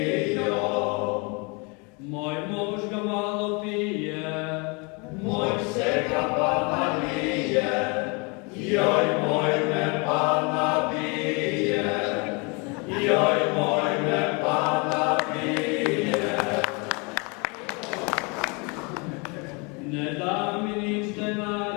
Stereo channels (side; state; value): right; quieter; 30.9 dB